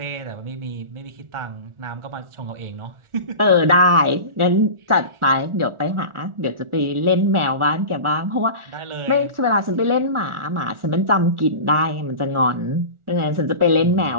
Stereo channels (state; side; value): late; left; 1.4 ms